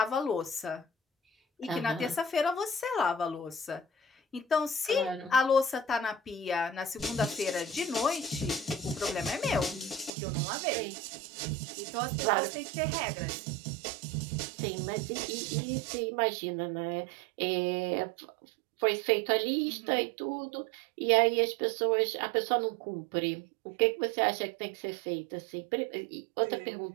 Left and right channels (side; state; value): left; drops out; at 10.1 s